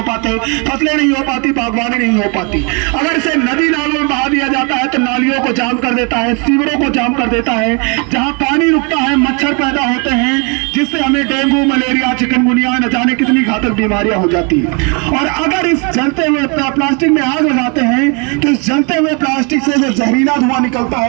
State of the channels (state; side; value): quieter; left; 33.8 dB